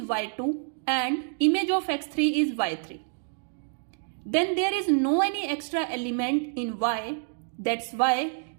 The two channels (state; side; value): silent; left; digital silence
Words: y2 and image of x3 is y3. Then there is no any extra element in y. That's why